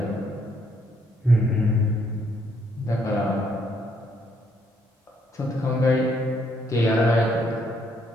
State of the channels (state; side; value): normal; both; correlation 0.70